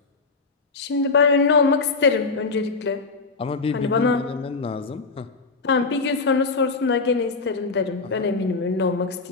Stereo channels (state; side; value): quieter; right; 4.2 dB